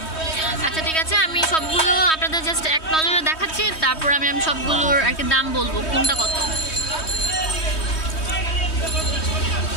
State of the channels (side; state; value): right; late; 3.2 ms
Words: আচ্ছা ঠিক আছে, আমি সবগুলো আপনাদের জাস্ট এক নজরে দেখাচ্ছি, তারপর আমি সবগুলোর আর কি দাম বলবো কোনটা কত।